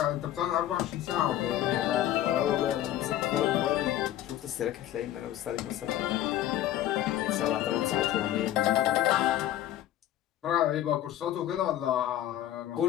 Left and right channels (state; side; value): quieter; right; 12.8 dB